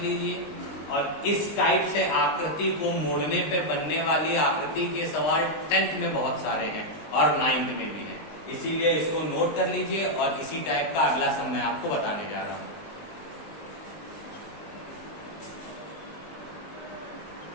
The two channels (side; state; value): right; late; 19 ms